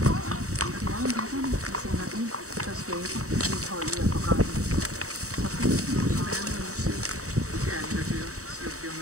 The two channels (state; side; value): late; left; 0.65 ms